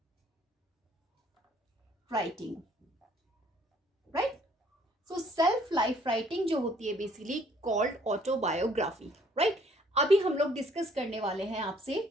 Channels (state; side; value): normal; both; correlation 0.61